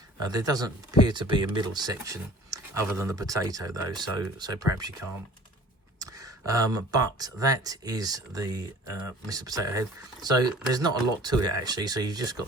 There doesn't appear to be a middle section other than the potato though, so perhaps you can't. But that is the Mr. Potato Head. So there's not a lot to it actually. So you've just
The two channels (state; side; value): normal; both; correlation 0.48